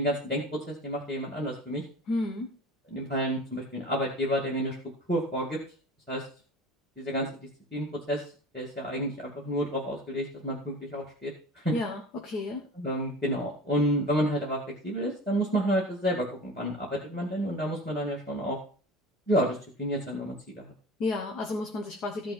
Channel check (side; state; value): both; normal; correlation 0.37